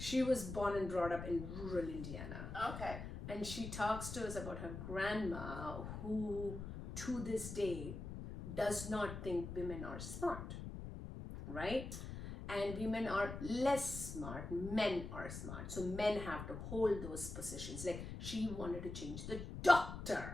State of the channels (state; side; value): noise; left; rumble, 8 dB below the sound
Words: was born and brought up in rural Indiana. Okay. And she talks to us about her grandma, who to this day does not think women are smart, right? And women are less smart, men are smart. So men have to hold those positions. Like she wanted to change the